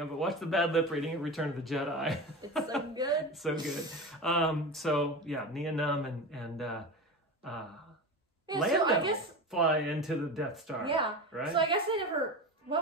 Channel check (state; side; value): normal; both; correlation 0.27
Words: but watch the bad lip reading at Return of the Jedi. It's so good. So good. So, yeah, Nien Nunb and Lando so I guess, fly into the Death Star. Yeah. Right? So I guess they never...